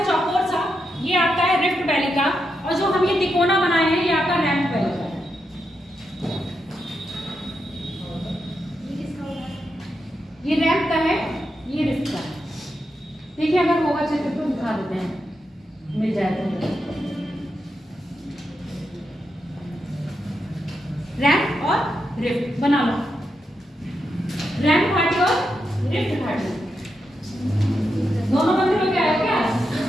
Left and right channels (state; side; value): normal; both; correlation 0.85